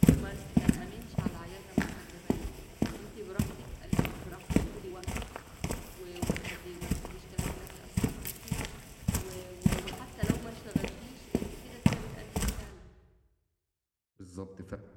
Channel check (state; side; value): identical; both; correlation 1.00